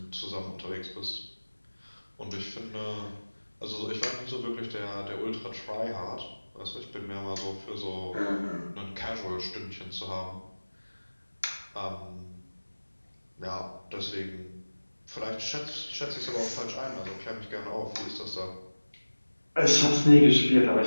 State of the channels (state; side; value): inverted; both; correlation -1.00